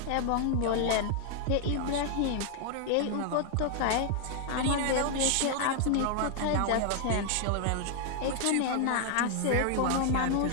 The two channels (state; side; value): different; both; correlation 0.00